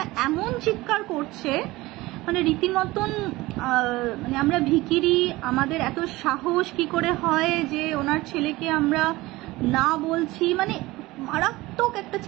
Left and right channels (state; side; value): quieter; left; 19.7 dB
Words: এমন চিৎকার করছে, মানে রীতিমতন মানে আমরা ভিখিরি, আমাদের এত সাহস কি করে হয় যে ওনার ছেলেকে আমরা না বলছি, মানে মারাত্মক একটা